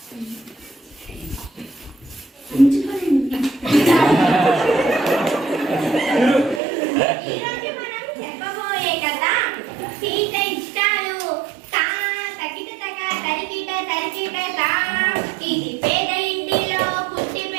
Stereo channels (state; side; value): drops out; left; at 6.6 s